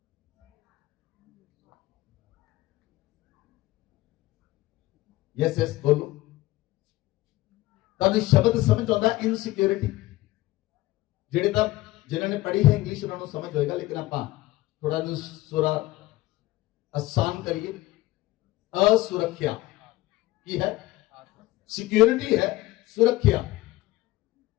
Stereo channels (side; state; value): right; quieter; 17.7 dB